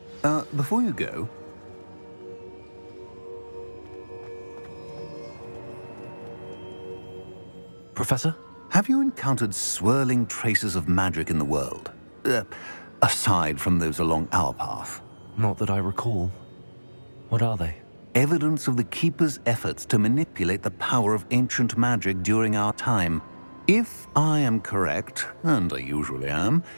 sir. Before you go... Professor? Have you encountered swirling traces of magic in the world? Aside from those along our path. Not that I recall. What are they? Evidence of the Keeper's efforts to manipulate the power of ancient magic during our time. If I am correct, and I usually am,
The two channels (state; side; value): inverted; both; correlation -1.00